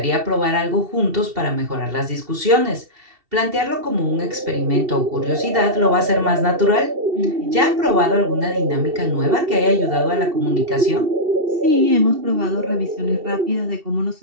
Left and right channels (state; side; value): late; left; 2.7 ms